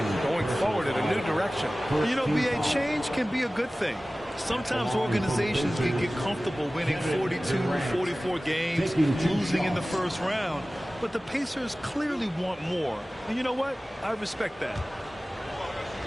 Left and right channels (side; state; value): both; normal; correlation 0.97